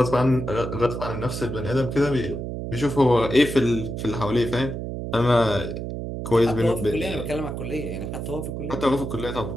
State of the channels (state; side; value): noise; right; hum, 5 dB below the sound